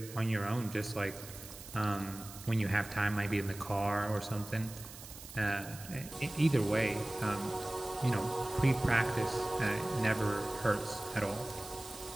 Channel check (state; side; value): noise; right; hiss, 15 dB below the sound